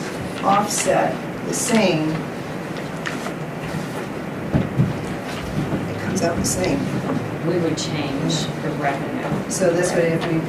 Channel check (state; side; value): identical; both; correlation 1.00